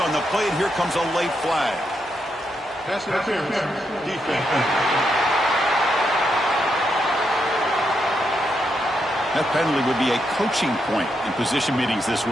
on the play, and here comes a late flag. Pass interference. Defense. That penalty would be a coaching point in position meetings this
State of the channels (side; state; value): both; normal; correlation 0.81